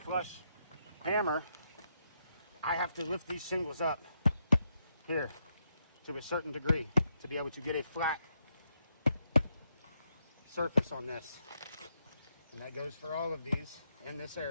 hammer, I have to lift these shingles up here to a certain degree to be able to get a flat surface on this. And that goes for all of these in this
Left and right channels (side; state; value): both; inverted; correlation -0.79